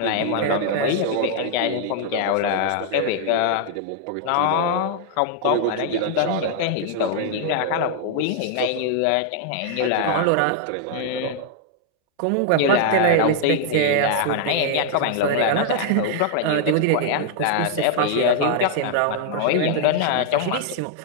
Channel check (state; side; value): different; both; correlation -0.01